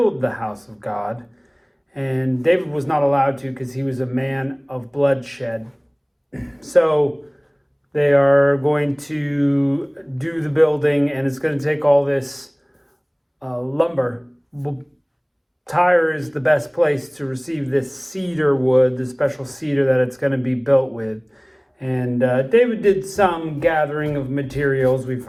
house of God. And David was not allowed to because he was a man of bloodshed. So they are going to do the building, and it's going to take all this lumber. Tyre is the best place to receive this cedar wood, the special cedar that it's going to be built with. And David did some gathering of materials, we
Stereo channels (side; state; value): both; identical; correlation 1.00